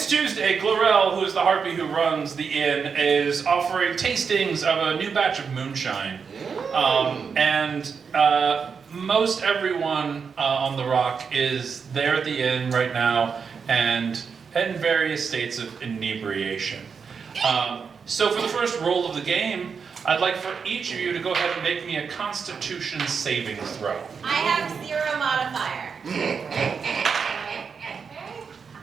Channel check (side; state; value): left; quieter; 5.9 dB